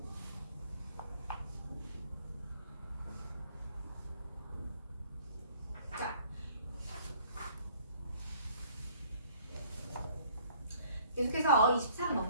자, 계속해서 23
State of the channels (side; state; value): both; inverted; correlation -0.57